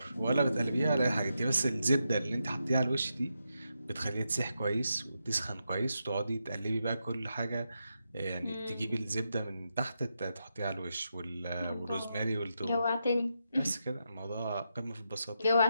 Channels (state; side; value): inverted; both; correlation -0.85